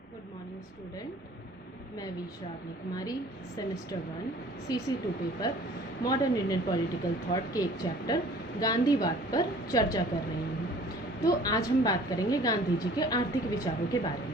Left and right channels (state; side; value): normal; both; correlation 0.50